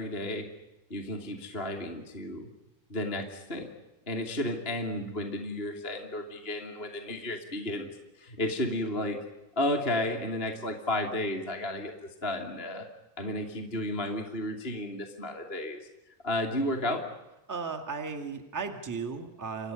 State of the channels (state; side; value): late; right; 2.9 ms